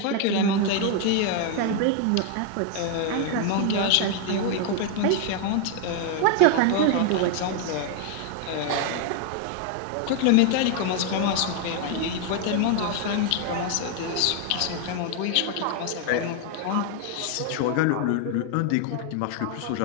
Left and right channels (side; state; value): both; different; correlation 0.00